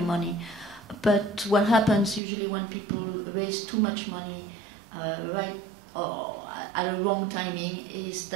money. But what happens usually when people raise too much money right or at a wrong timing is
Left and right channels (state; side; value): drops out; left; at 2.2 s